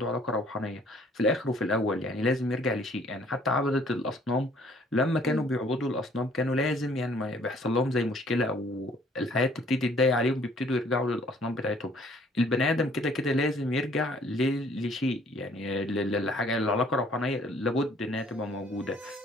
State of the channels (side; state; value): both; normal; correlation 0.59